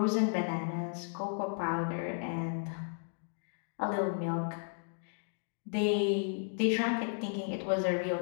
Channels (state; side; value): silent; right; digital silence